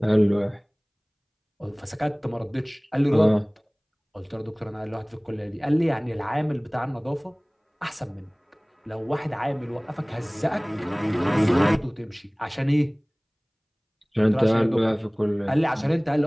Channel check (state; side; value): identical; both; correlation 1.00